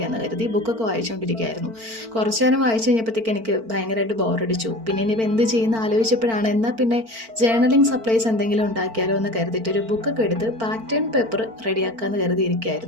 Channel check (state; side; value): late; left; 4.5 ms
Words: കരുതി. ബുക്കൊക്കെ വായിച്ചുകൊണ്ടിരിക്കുകയായിരുന്നു. കുറച്ച് നേരം വായിച്ചു കഴിഞ്ഞപ്പോഴത്തേക്ക് എനിക്ക് ഭയങ്കരമായിട്ട് ബോറടിച്ചു. പിന്നെ ഇനിയിപ്പോൾ എന്ത് ചെയ്യുന്ന ആലോചിച്ചപ്പോഴാണ് എന്നാൽ പിന്നെ ജേർണലിംഗ് സപ്ലൈസ് എന്തെങ്കിലും ഉണ്ടാക്കിയാലോ എന്ന് കരുതിയിട്ട് ഒരു ബുക്കൊക്കെ എടുത്ത് പാറ്റേൺ പേപ്പർ റെഡിയാക്കാമെന്ന്